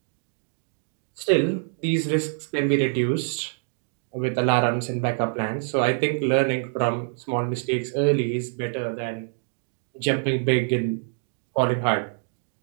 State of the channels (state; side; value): silent; left; digital silence